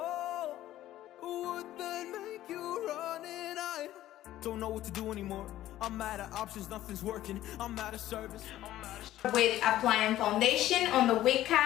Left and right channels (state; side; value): quieter; right; 13.9 dB